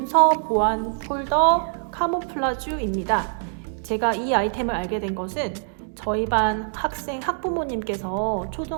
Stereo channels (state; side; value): silent; left; digital silence